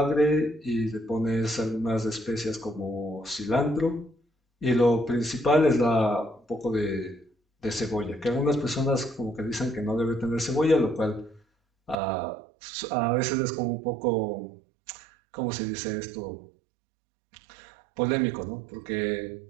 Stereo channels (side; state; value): left; drops out; at 12.0 s